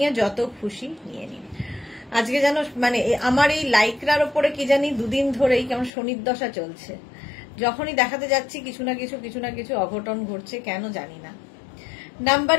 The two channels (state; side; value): drops out; right; at 5.9 s